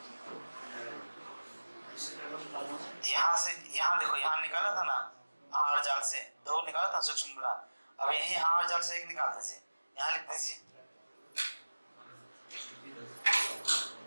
यहाँ से, यहाँ देखो, यहाँ निकाला था ना आहार जाल से, दो निकाला था सूक्ष्म मिला, अब यही आहार जाल से एक निकाल दीजिए, यहाँ लिख दीजिए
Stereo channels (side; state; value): both; inverted; correlation -1.00